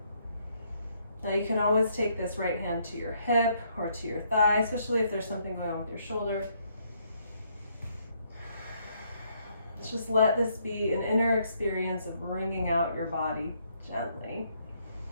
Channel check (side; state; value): both; inverted; correlation -0.71